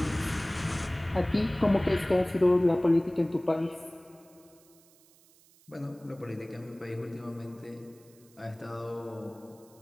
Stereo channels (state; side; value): noise; right; hiss, 28 dB below the sound